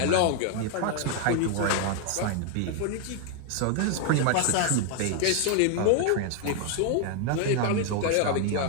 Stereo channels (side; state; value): both; different; correlation 0.00